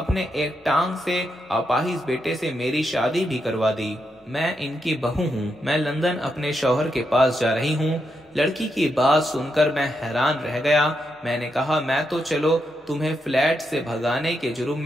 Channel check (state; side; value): normal; both; correlation 0.83